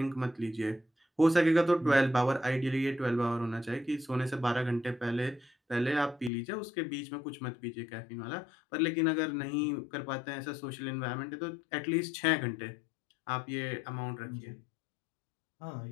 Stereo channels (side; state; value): right; drops out; at 6.3 s